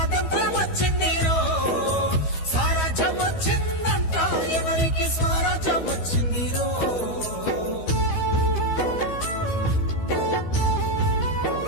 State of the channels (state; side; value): late; right; 12 ms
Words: వచ్చిందిరో స్వరాజ్యం వచ్చిందంట ఎవరికి స్వరాజ్యం వచ్చిందిరో